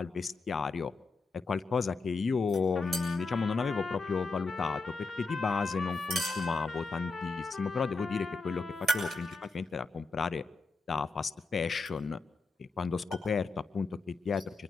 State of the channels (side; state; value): right; quieter; 3.9 dB